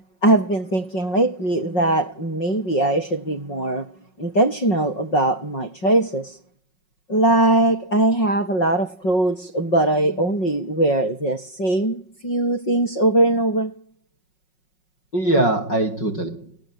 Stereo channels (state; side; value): late; right; 5.5 ms